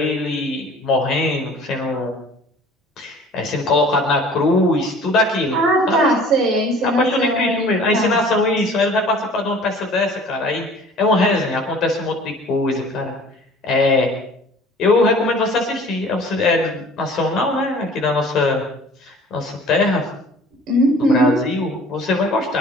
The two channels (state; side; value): normal; both; correlation 0.48